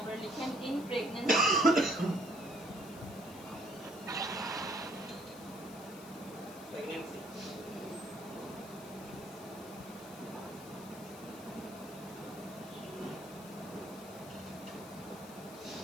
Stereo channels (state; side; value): noise; left; hiss, 17 dB below the sound